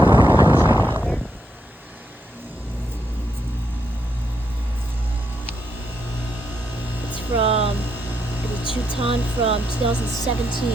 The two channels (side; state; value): both; normal; correlation 0.80